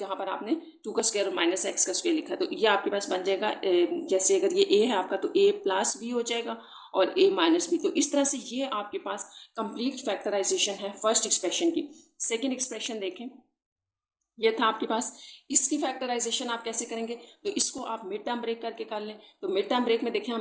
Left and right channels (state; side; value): identical; both; correlation 1.00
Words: पर आपने 2 का स्क्वायर और माइनस x का स्क्वायर लिखा है। तो ये आपके पास बन जाएगा, जैसे अगर ये a है आपका तो a प्लस बी हो जाएगा और a माइनस बी। तो इस तरह से ये आपके पास कंप्लीट फैक्टराइजेशन है फर्स्ट एक्सप्रेशन की। सेकेंड एक्सप्रेशन देखें, ये था आपके पास। इसकी फैक्टराइजेशन आप कैसे करेंगे, तो इसको आप मिड टर्म ब्रेक करके कर लें। तो मिड टर्म ब्रेक में देखें